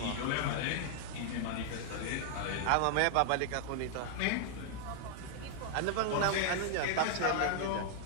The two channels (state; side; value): different; both; correlation 0.00